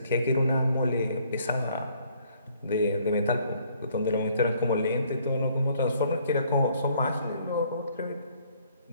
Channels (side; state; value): both; inverted; correlation -0.63